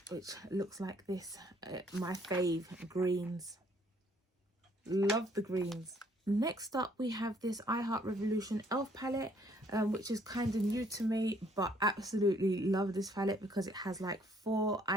which looks like this. My fave, greens. Love the greens. Next up, we have this I Heart Revolution Elf palette, which is kind of new to me, but absolutely love this palette because it has like 4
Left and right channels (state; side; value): normal; both; correlation 0.64